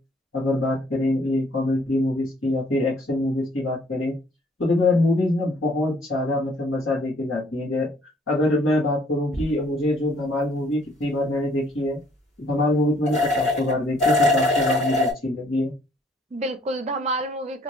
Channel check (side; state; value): both; normal; correlation 0.61